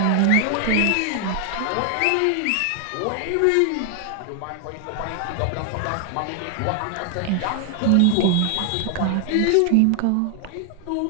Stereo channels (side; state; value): both; different; correlation 0.00